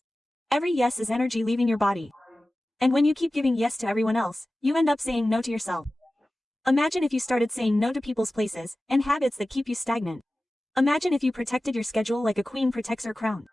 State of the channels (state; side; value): normal; both; correlation 0.96